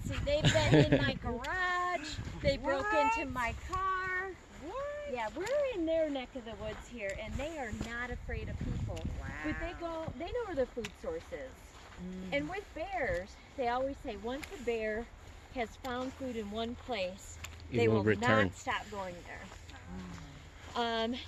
see, they've been in my garage. They broke What? into my car. What? Yeah, we're in their neck of the woods here, and they are not afraid of people. But they know where their food source is. And with bears, they always say once a bear has found food in one place, they will return. not stop going there.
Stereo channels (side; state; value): both; identical; correlation 1.00